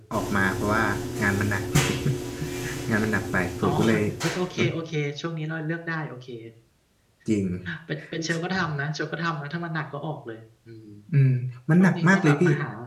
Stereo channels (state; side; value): identical; both; correlation 1.00